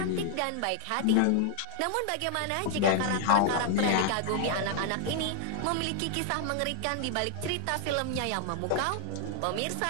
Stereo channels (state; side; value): different; both; correlation -0.01